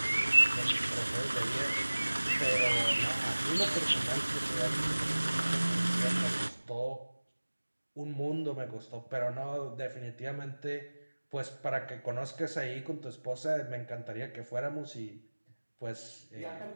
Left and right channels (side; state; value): both; inverted; correlation -1.00